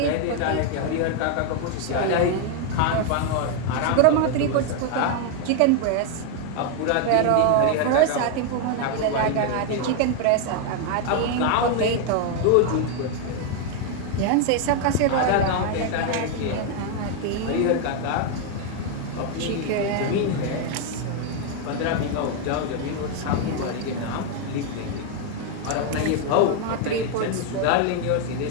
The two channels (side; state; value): both; different; correlation 0.01